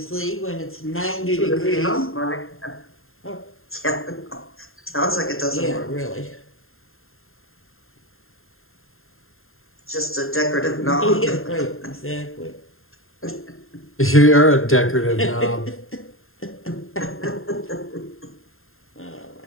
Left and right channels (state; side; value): late; right; 0.61 ms